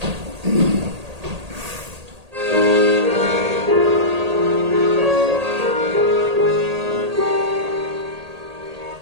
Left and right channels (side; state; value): left; late; 1.8 ms